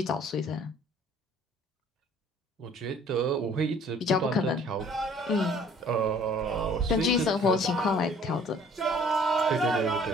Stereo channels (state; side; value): normal; both; correlation 0.54